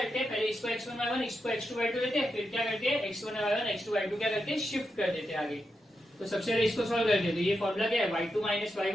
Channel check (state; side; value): normal; both; correlation 0.86